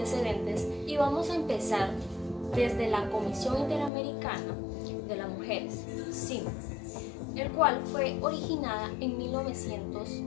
y vamos a empezar desde la Comisión Interamericana de las Mujeres, CIM, el cual fue originada en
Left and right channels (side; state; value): right; drops out; at 3.9 s